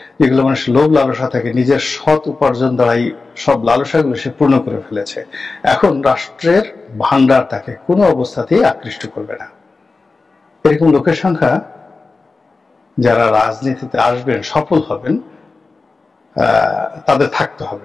যেগুলো মানুষ লোভ লালসা থাকে, নিজের সৎ উপার্জন দ্বারাই সব লালসাগুলো সে পূর্ণ করে ফেলেছে। এখন রাষ্ট্রের ভান্ডার তাকে কোনো অবস্থাতেই আকৃষ্ট করবে না। এরকম লোকের সংখ্যা যারা রাজনীতিতে আসবেন, সফল হবেন, তাদের থাকতে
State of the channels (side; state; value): right; quieter; 3.9 dB